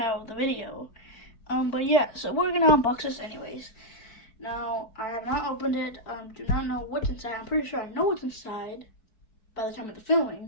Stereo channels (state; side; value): late; right; 4.6 ms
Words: of the video. But yeah, so we're gonna unbox this anyways. Now I have not opened it. Do not know what's inside. I'm pretty sure I know what's inside by the time of the